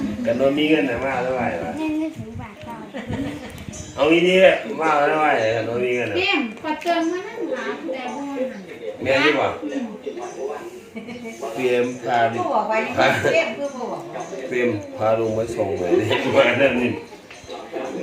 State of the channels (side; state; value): both; identical; correlation 1.00